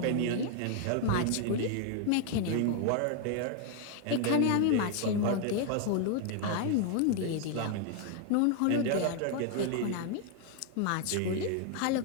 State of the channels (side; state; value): both; different; correlation 0.00